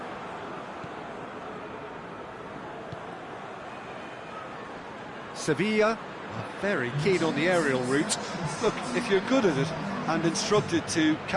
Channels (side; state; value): both; identical; correlation 1.00